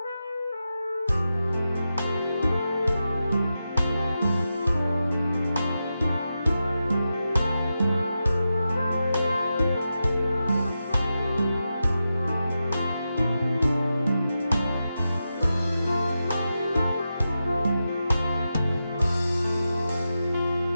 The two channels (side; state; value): both; inverted; correlation -0.90